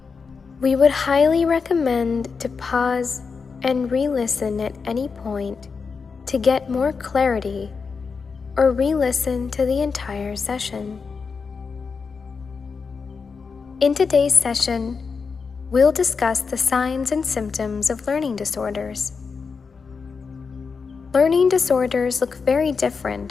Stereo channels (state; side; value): quieter; right; 5.2 dB